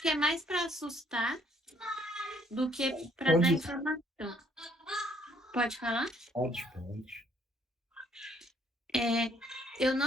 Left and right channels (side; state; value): both; normal; correlation 0.65